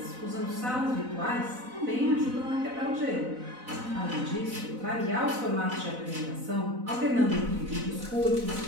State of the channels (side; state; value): left; late; 4.0 ms